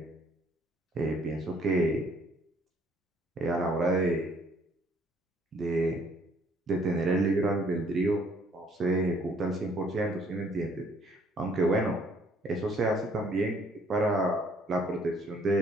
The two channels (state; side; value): normal; both; correlation 0.62